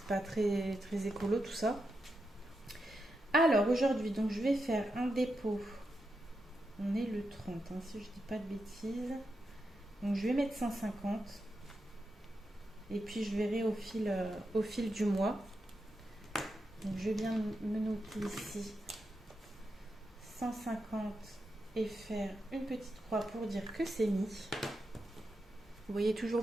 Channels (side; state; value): both; normal; correlation 0.86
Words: pas très, très écolo tout ça. Alors aujourd'hui, donc je vais faire un dépôt. On est le 30, hein, si je dis pas de bêtises. Donc je vais mettre 150. Et puis je verrai au fil du mois. Donc je viens me noter ici 150 et faire une petite croix pour dire que c'est mis. Vous voyez toujours